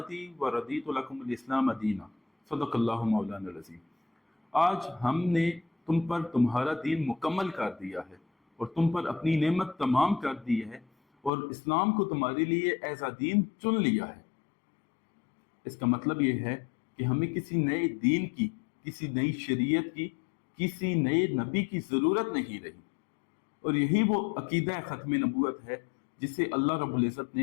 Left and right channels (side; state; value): right; drops out; at 11.3 s